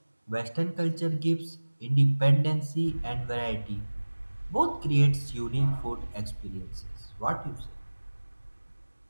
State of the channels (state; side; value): inverted; both; correlation -1.00